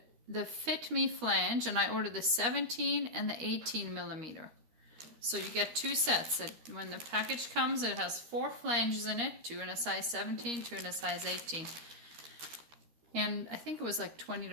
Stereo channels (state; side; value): late; left; 13 ms